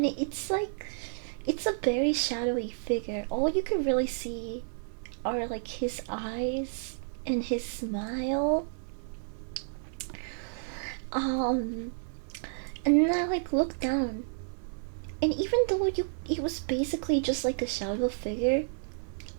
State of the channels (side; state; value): left; silent; 57 dB below the other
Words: it's a very shadowy figure. All you can really see are like his eyes and his smile. And then I like looked down, and even though it was basically just like a shadow figure,